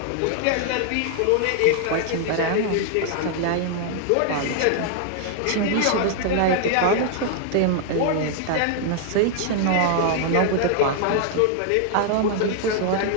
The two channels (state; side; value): different; both; correlation 0.00